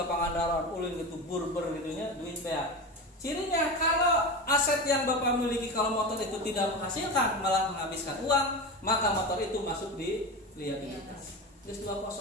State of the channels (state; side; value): normal; both; correlation 0.24